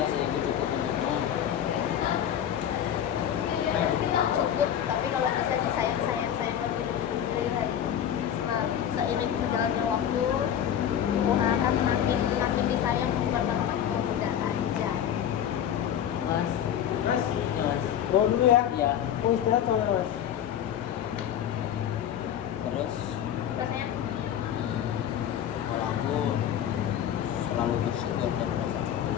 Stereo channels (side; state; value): right; quieter; 9.9 dB